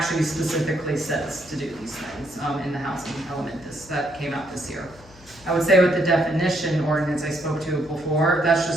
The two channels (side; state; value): left; noise; hum, 23 dB below the sound